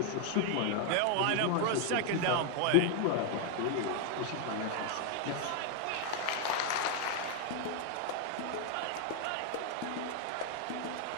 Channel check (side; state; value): both; different; correlation 0.00